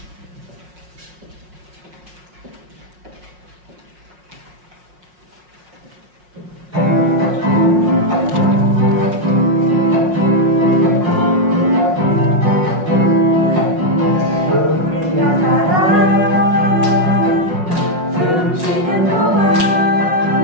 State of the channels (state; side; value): late; left; 5.5 ms